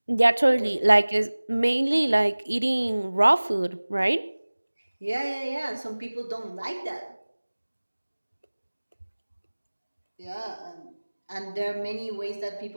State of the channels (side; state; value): both; inverted; correlation -1.00